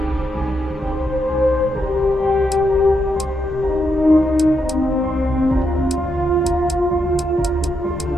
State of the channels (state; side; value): normal; both; correlation 0.81